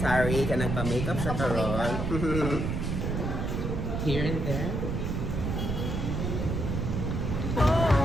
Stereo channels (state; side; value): noise; right; rumble, 1 dB below the sound